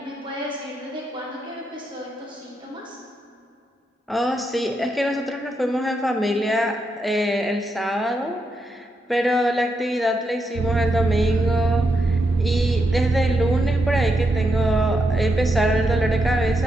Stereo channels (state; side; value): normal; both; correlation 0.83